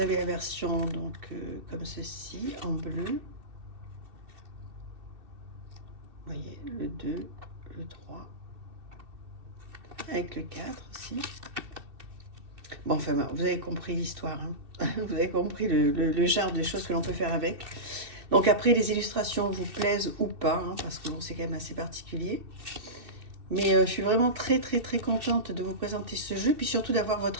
avez la version donc comme ceci en bleu. Vous voyez le 2, le 3 avec le 4 aussi. Bon enfin vous avez compris l'histoire, hein. Vous avez compris le genre de choses que l'on peut faire avec. Donc après les illustrations vous plaisent ou pas, hein, parce que bon, c'est quand même assez particulier. Mais je suis vraiment très contente de vous présenter ce jeu, puis surtout d'avoir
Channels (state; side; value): late; left; 2.7 ms